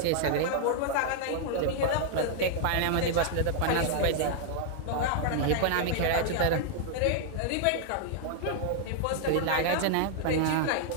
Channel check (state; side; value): different; both; correlation 0.00